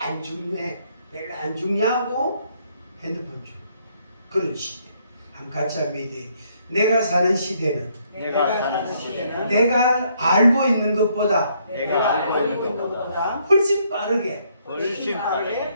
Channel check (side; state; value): both; inverted; correlation -0.70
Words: 중요해. 별로 안 중요하고 핸드폰 중. 그런 시대. 한번 같이 한번 얘기해. 내가 사는 시대는 내가 알고 있는 것보다 훨씬 빠르게